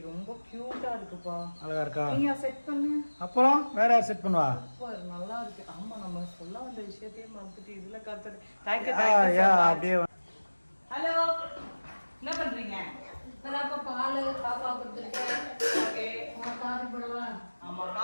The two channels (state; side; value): inverted; both; correlation -1.00